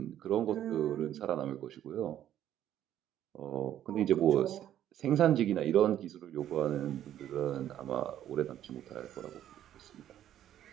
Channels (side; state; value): left; quieter; 11.4 dB